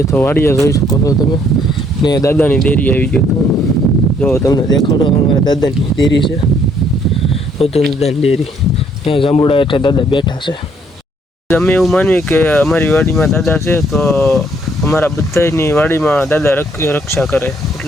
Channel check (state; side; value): normal; both; correlation 0.66